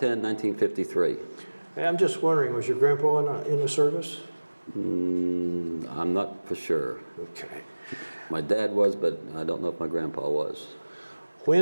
1953. Hey, I'm just wondering, was your grandpa in the service? I'm not for sure. Okay. My dad was, but I don't know if my grandpa was.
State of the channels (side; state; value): both; inverted; correlation -1.00